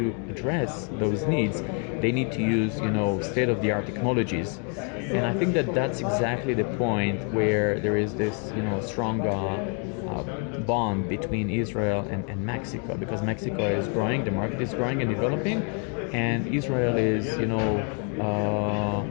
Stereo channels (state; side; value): quieter; right; 39.9 dB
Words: address those needs, they need to use, state-of-the-art technologies. And I think that that's exactly the point where there is this, strong bond between Israel and Mexico, because Mexico is growing, the market is growing and developing, and Israel is,